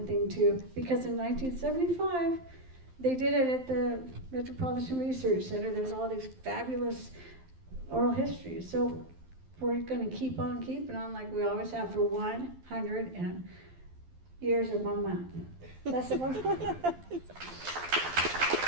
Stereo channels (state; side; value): late; left; 12 ms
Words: thing too, because in 1975, they did it at the Metropolitan Research Center. There's all these fabulous oral histories. So we're gonna keep on keeping on like we always have for 100 years and 1 month. That's the one.